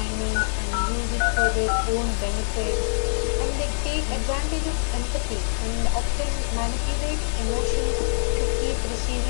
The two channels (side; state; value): right; silent; digital silence